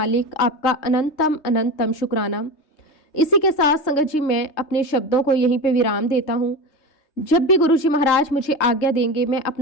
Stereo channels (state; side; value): late; right; 3.2 ms